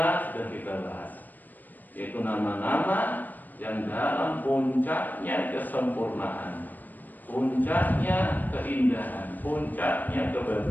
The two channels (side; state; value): right; late; 0.086 ms